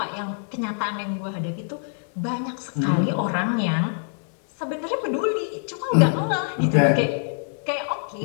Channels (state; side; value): silent; right; 62 dB below the other